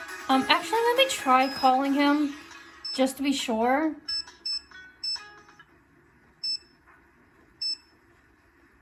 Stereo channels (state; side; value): identical; both; correlation 1.00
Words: Actually, let me try calling him, just to be sure.